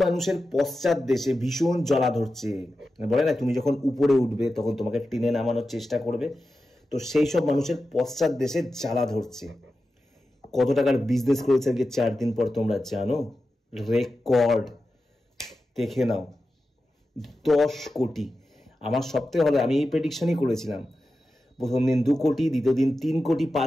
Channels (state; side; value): normal; both; correlation 0.92